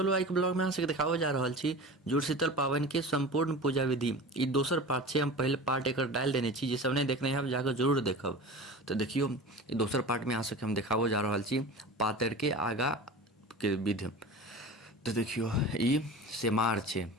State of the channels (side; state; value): both; normal; correlation 0.34